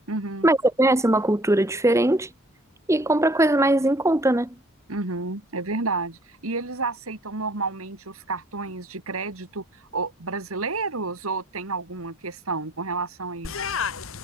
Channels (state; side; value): normal; both; correlation 0.58